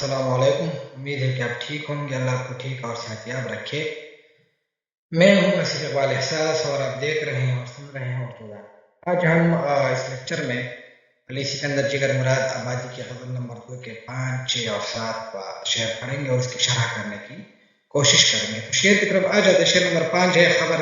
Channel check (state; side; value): identical; both; correlation 1.00